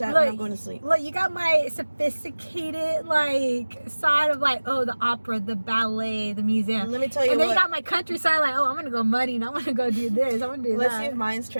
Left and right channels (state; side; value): inverted; both; correlation -1.00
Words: look. when I'm going to sleep. Look, you got my sophisticated like side of like, oh, the opera, the ballet, the museum. Let me tell you And then what. you got my countryside, like, oh, I'm gonna go mudding. I'm gonna go do this. I'm gonna do Let's that. see if mine's